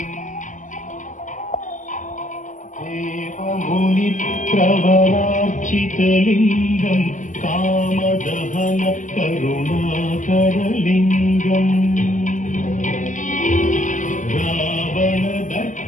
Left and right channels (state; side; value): late; right; 0.37 ms